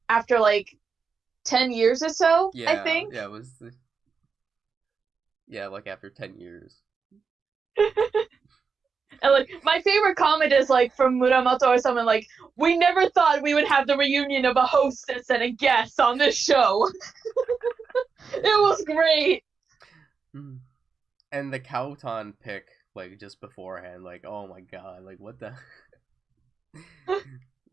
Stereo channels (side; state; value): left; quieter; 5.4 dB